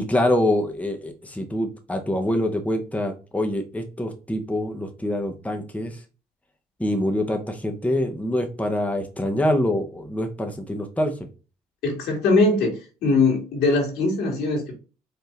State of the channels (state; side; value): normal; both; correlation 0.68